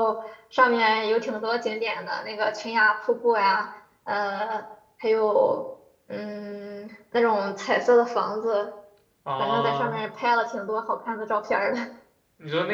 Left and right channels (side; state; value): both; identical; correlation 1.00